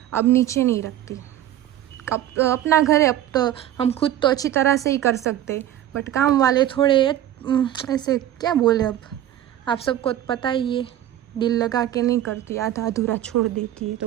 अब नीचे नहीं रखती। अब अपना घर है, अब तो हम खुद तो अच्छी तरह से ही कर सकते, बट काम वाले थोड़े ऐसे क्या बोले, अब आप सबको पता ही है, दिल लगा के नहीं करती, आधा अधूरा छोड़ देती है, तो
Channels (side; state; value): left; quieter; 12.2 dB